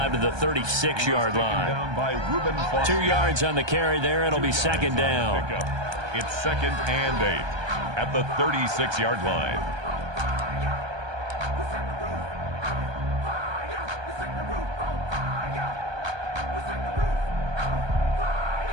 to the 36-yard line. 2 yards on the carry there. It'll be 2nd down. It's 2nd and 8 at the 36-yard line.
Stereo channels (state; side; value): late; left; 1.2 ms